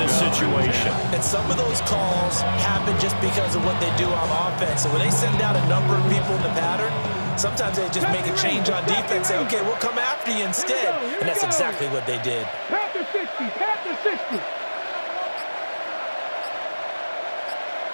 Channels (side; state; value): both; inverted; correlation -1.00